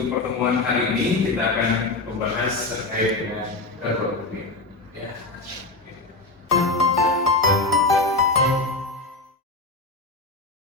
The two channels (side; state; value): right; quieter; 3.3 dB